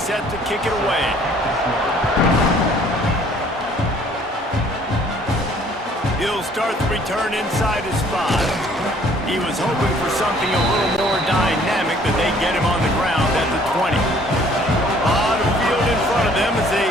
to kick it away. He'll start the return inside his 5. He was hoping for something a little more dynamic, but they get him on the ground at the 20. A lot of field in front of them as they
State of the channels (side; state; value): both; normal; correlation 0.58